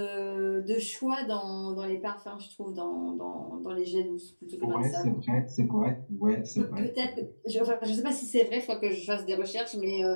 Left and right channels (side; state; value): both; inverted; correlation -1.00